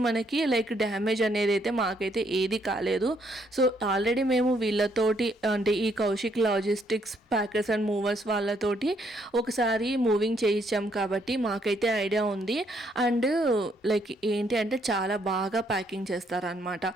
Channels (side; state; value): both; normal; correlation 0.71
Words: మనకి లైక్ డ్యామేజ్ అనేది అయితే మాకైతే ఏది కాలేదు. సో ఆల్రెడీ మేము వీళ్ళతోటి అంటే ఈ Kaushik logistics packers and movers వాళ్ళతోటి ఒకసారి మూవింగ్ చేయించాం కాబట్టి మాకైతే ఐడియా ఉంది. అండ్ లైక్ ఏంటి అంటే చాలా బాగా ప్యాకింగ్ చేస్తారనమాట.